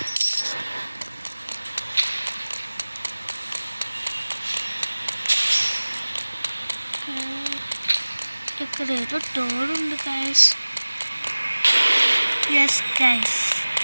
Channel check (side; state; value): both; inverted; correlation -1.00